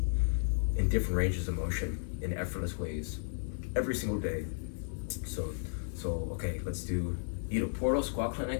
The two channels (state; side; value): silent; right; digital silence